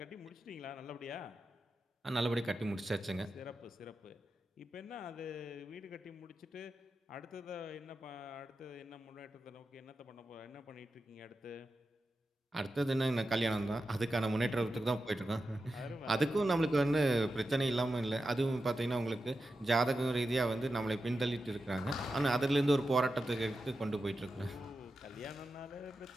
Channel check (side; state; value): both; normal; correlation 0.90